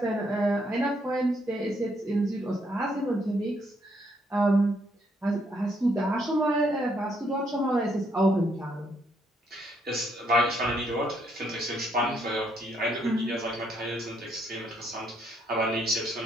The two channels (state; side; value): normal; both; correlation 0.72